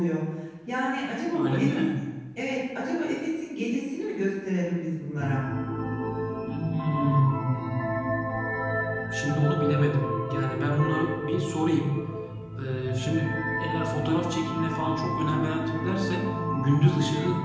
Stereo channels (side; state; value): both; identical; correlation 1.00